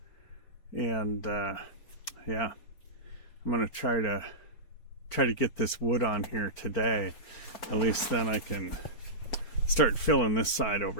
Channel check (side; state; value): right; late; 4.4 ms